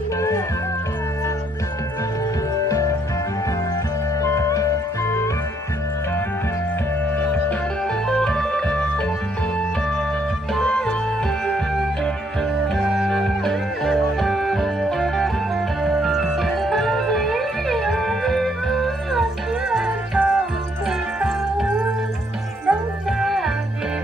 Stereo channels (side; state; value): both; normal; correlation 0.71